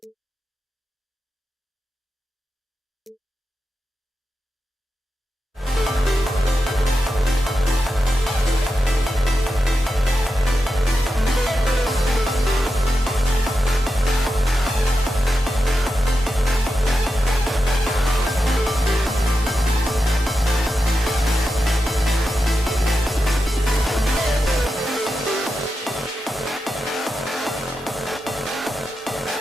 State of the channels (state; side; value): normal; both; correlation 0.89